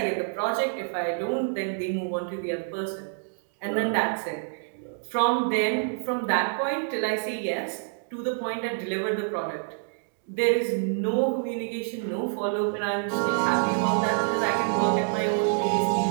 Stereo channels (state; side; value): silent; left; 60 dB below the other